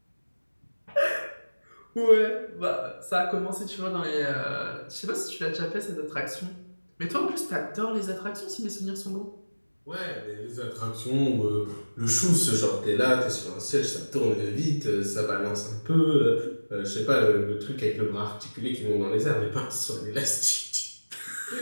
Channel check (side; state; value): both; inverted; correlation -1.00